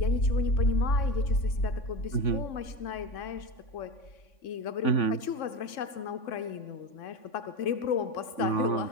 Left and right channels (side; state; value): right; late; 3.6 ms